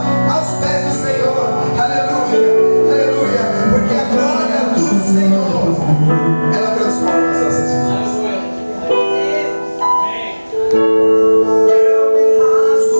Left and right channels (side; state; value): both; inverted; correlation -1.00